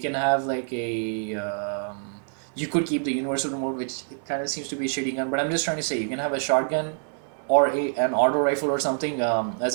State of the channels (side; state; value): left; silent; 61 dB below the other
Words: have like a you could keep the universal remote, which kind of seems to be a shitty gun. But I'm just trying to say you can have a shotgun or an auto rifle or something as